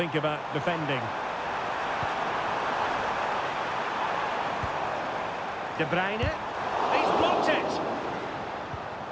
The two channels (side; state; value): both; identical; correlation 1.00